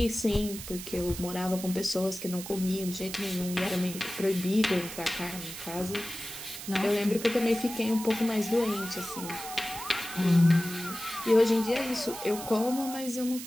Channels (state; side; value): noise; right; hiss, 10 dB below the sound